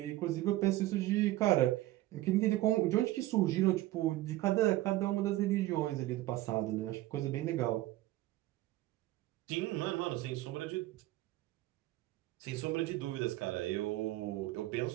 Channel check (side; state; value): left; quieter; 16.4 dB